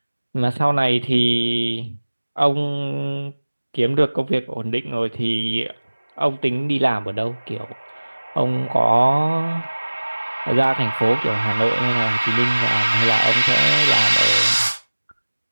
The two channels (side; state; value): both; inverted; correlation -1.00